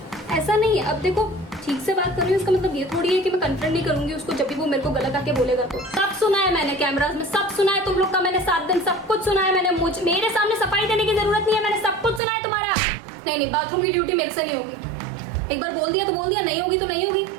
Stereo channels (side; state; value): left; drops out; at 12.2 s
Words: ऐसा नहीं है, अब देखो ठीक से बात कर रही हूँ, इसका मतलब ये थोड़ी है कि मैं कन्फ्रंट नहीं करूंगी उसको जब भी वो मेरे को गलत आके बोलेगा। तो सब सुना है मैंने, कैमरास में सब सुना है तुम लोग का, मैंने 7 दिन सब कुछ सुना है मैंने। मेरे सामने सफाई देने की जरूरत नहीं है, मैंने सब कुछ सुना है तुम्हारा। नहीं बाथरूम की ड्यूटी मेरे से नहीं होगी। एक बार बोल दिया तो बोल दिया, नहीं होगी तो नहीं होगी।